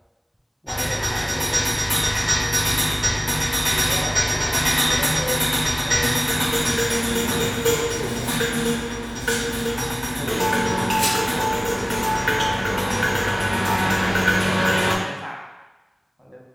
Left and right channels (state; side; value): identical; both; correlation 1.00